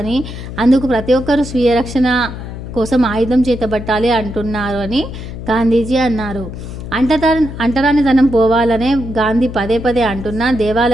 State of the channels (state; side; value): noise; left; hum, 10 dB below the sound